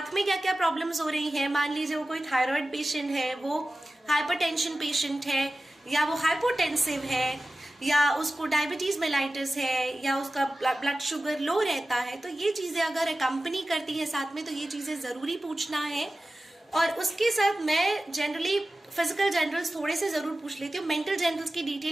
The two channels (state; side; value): normal; both; correlation 0.95